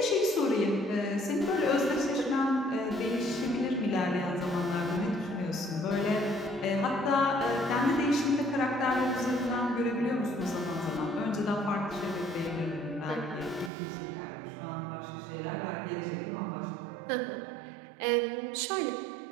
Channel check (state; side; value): drops out; left; at 13.7 s